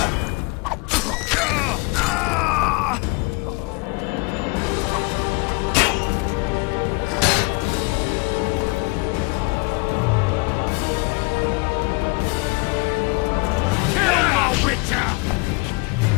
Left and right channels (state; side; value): quieter; right; 28.1 dB